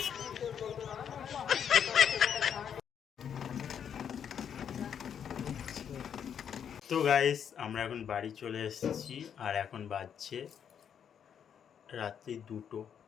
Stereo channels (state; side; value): quieter; right; 8.2 dB